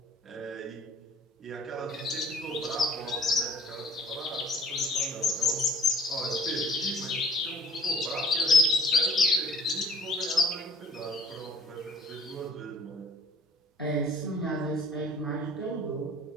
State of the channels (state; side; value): normal; both; correlation 0.56